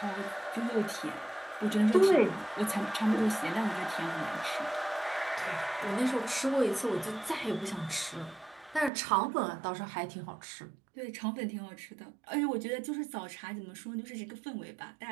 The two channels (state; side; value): drops out; left; at 8.9 s